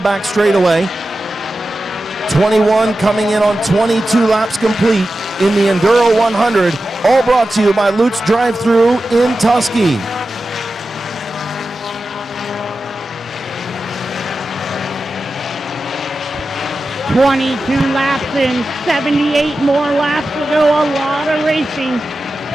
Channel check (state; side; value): normal; both; correlation 0.93